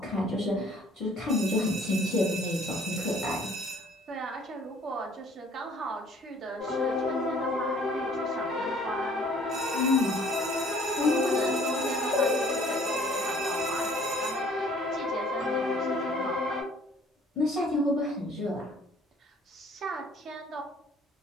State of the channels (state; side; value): normal; both; correlation 0.56